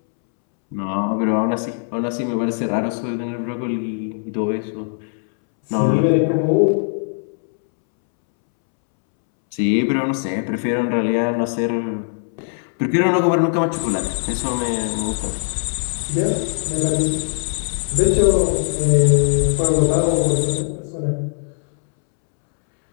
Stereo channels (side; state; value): right; silent; 66 dB below the other